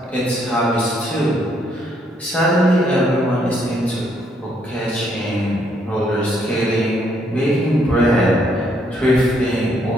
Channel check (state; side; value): normal; both; correlation 0.71